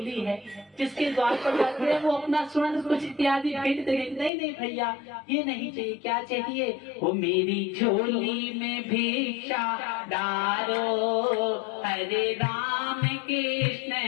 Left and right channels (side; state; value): right; drops out; at 4.3 s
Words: है, जिसके द्वार पर जाते हैं वो अपना स्वर्ण कुछ इत्यादि भेंट देंगे। नहीं नहीं भैया, ये नहीं चाहिए। क्या चाहिए? वो मेरी झोली में भिक्षा डालो, हरे राम कृष्ण